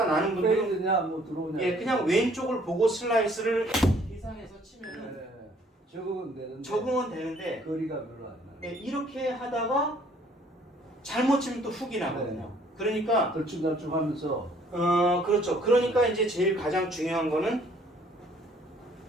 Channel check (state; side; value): normal; both; correlation 0.60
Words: 나는 분들은 페이드냐 뭐 들어오냐. 예, 그냥 왼쪽을 보고 슬라이스를 계산해서 치면은 적응은 되는데 거리가 별로 안 나요. 예, 이렇게 하다가 잘못 치면 또 훅이 나거든요. 그러니까 덜쭉덜쭉하면서. 그렇죠. 그러니까 이제 제일 가장 중요한 거는